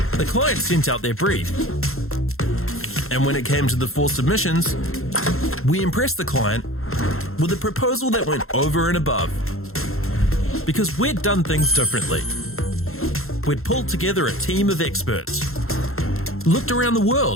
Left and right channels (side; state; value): right; late; 0.62 ms